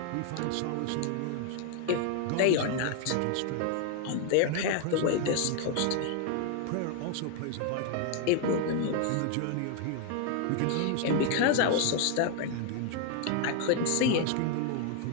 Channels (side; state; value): both; different; correlation 0.00